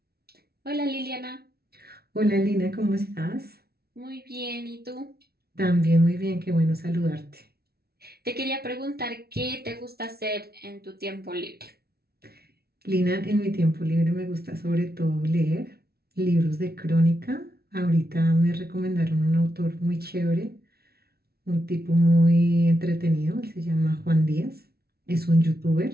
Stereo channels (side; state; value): left; late; 0.45 ms